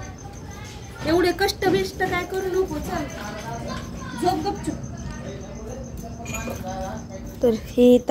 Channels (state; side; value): identical; both; correlation 1.00